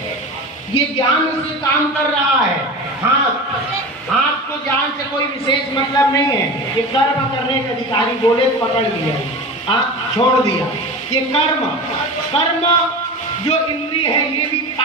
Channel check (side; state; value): both; normal; correlation 0.30